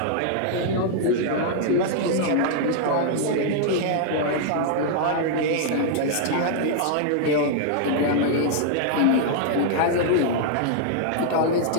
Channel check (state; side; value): different; both; correlation -0.01